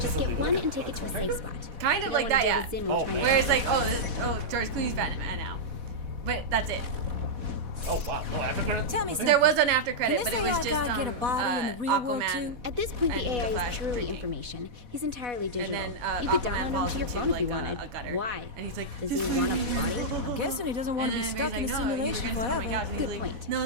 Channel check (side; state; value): left; late; 4.1 ms